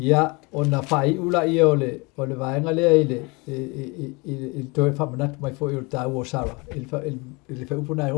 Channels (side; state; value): right; quieter; 27.8 dB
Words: ona fai ula ia ole vaenga le i to fa manat mai fo i ta wo sara il fa upuna